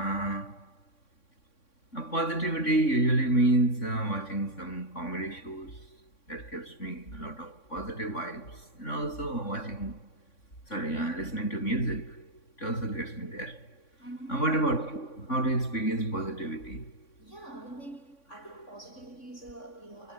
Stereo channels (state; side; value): late; right; 3.6 ms